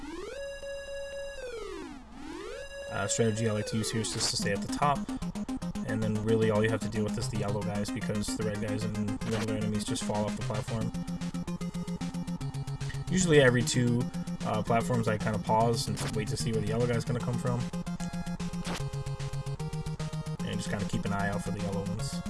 Strategy I like to use here is just to stay at the top, and then really all you have to deal with is the yellow guys, because the red guys and the other enemies just fall off the platform. Usually every 2 platforms I kind of pause and wait to see where the yellow guy's going to come from, and just kind of keep an eye out for the yellow ones,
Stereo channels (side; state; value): both; identical; correlation 1.00